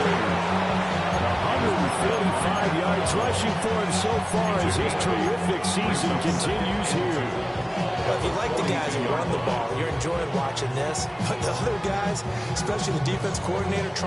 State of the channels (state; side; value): identical; both; correlation 1.00